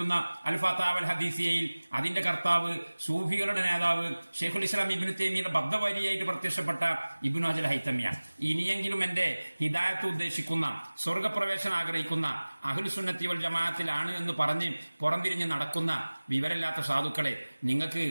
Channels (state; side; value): inverted; both; correlation -1.00